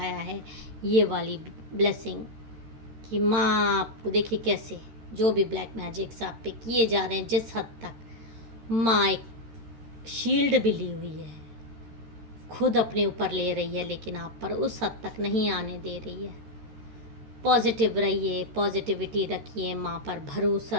है ये वाली ब्लेसिंग कि माँ आपको देखिए कैसे जो भी ब्लैक मैजिक्स आप पे किए जा रहे हैं, जिस हद तक माँ एक शील्ड भी ली हुई है, खुद अपने ऊपर ले रही है, लेकिन आप पर उस हद तक नहीं आने दे रही है। पॉजिटिव रहिए, पॉजिटिविटी रखिए, माँ पर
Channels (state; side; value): late; left; 13 ms